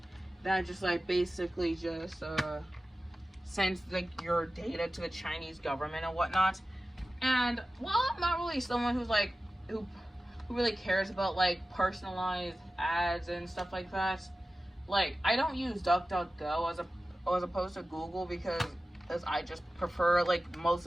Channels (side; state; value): both; normal; correlation 0.95